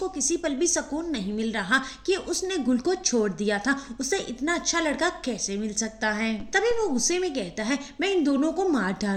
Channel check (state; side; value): identical; both; correlation 1.00